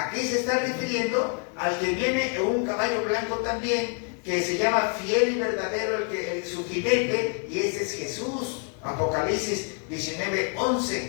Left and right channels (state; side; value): quieter; right; 38.5 dB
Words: se está refiriendo al que viene en un caballo blanco también, que se llama fiel y verdadero, su jinete, y ese es Jesús. Apocalipsis 19,